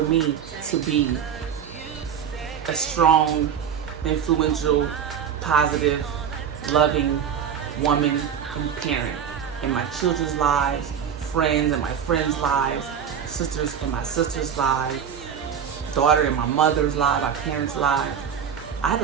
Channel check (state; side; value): quieter; left; 8.1 dB